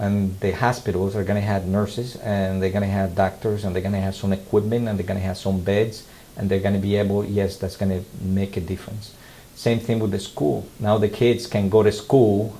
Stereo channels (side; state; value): both; identical; correlation 1.00